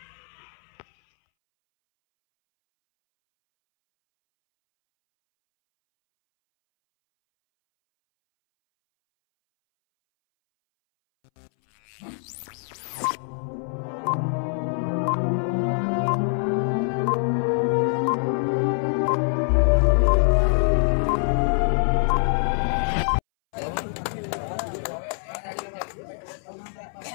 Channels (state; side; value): silent; right; 62 dB below the other